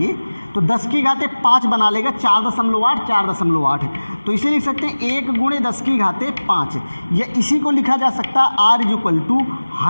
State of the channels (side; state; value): both; inverted; correlation -1.00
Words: तो 10 की घाते 5 बना लेगा, 4.8 4.8, तो इसे लिख सकते हैं 1 गुणे 10 की घाते 5, या इसी को लिखा जा सकता है R is equal to